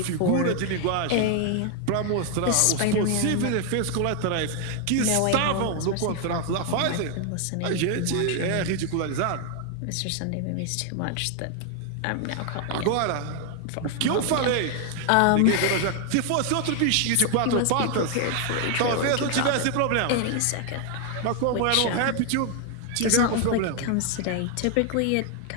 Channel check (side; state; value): both; different; correlation 0.00